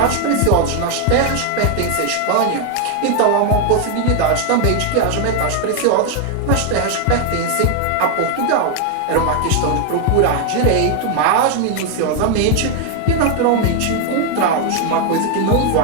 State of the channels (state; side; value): different; both; correlation 0.00